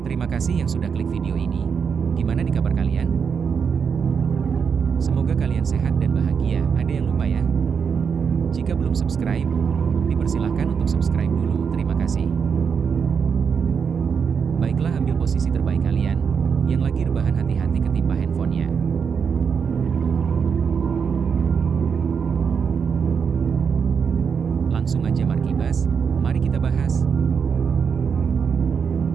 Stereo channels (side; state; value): left; quieter; 6.5 dB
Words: Terima kasih yang sudah klik video ini. Gimana nih kabar kalian? Semoga kalian sehat dan bahagia. Ada yang lupa ya? Jika belum subscribe, dipersilahkan untuk subscribe dulu. Terima kasih. Baiklah, ambil posisi terbaik kalian. Yang lagi rebahan, hati-hati ketimpa handphonenya. Langsung aja Markibas, mari kita bahas.